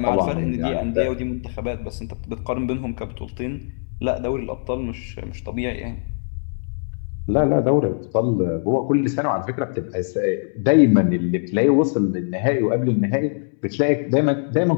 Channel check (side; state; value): right; silent; digital silence